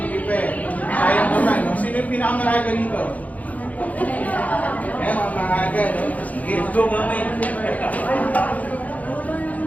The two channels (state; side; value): late; right; 0.074 ms